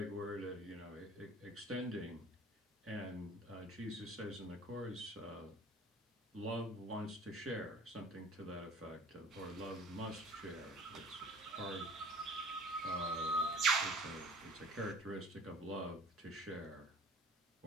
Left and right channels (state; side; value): normal; both; correlation 0.46